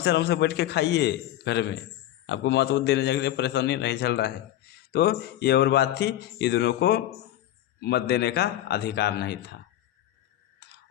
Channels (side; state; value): right; quieter; 13.2 dB